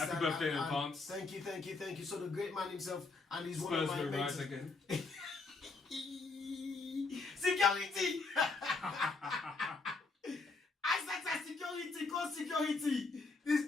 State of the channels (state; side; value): quieter; right; 3.9 dB